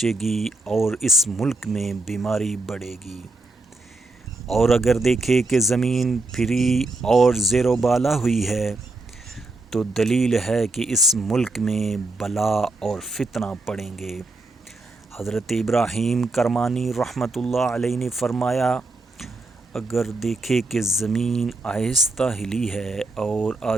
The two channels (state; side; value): quieter; left; 3.1 dB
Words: گی اور اس ملک میں بیماری بڑھے گی۔ اور اگر دیکھے کہ زمین پھری اور زیر و بالا ہوئی ہے، تو دلیل ہے کہ اس ملک میں بلا اور فتنہ پڑیں گے۔ حضرت ابراہیم کرمانی رحمۃ اللہ علیہ نے فرمایا، اگر دیکھے کہ زمین آہستہ ہلی ہے اور